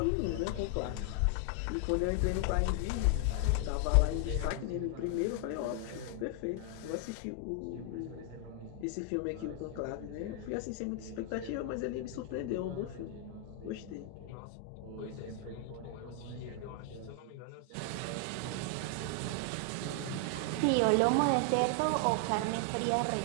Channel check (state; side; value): different; both; correlation 0.00